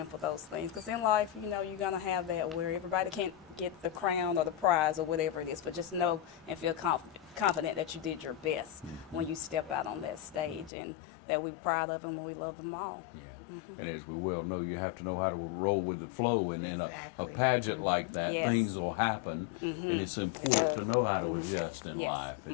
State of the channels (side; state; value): right; drops out; at 10.7 s